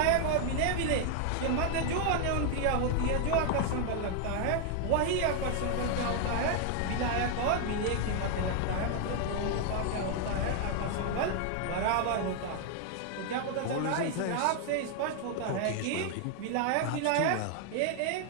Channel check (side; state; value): both; different; correlation 0.00